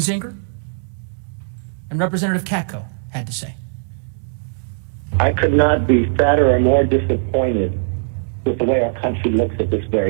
Kinzinger, and Representative Katko had to say. I could not be sadder or more disappointed with the way our country looks at this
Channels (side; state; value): left; silent; digital silence